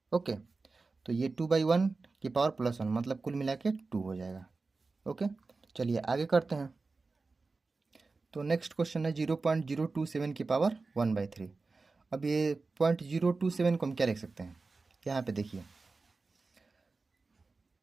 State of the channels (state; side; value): quieter; left; 3.9 dB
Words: ओके, तो ये 2/1 की पावर +1 मतलब कुल मिला के 2 हो जाएगा। ओके, चलिए आगे करते हैं। तो नेक्स्ट क्वेश्चन है 0.027 की पावर 1/3। अब ये 0.027 को हम क्या लिख सकते हैं, यहाँ पे देखिए